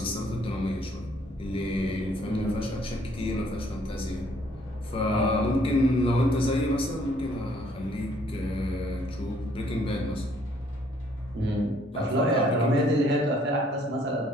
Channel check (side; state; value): both; normal; correlation 0.64